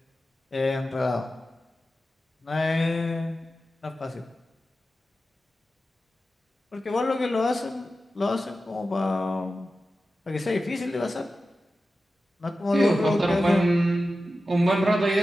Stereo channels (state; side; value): normal; both; correlation 0.93